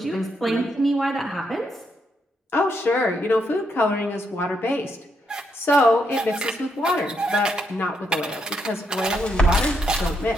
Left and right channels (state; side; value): normal; both; correlation 0.78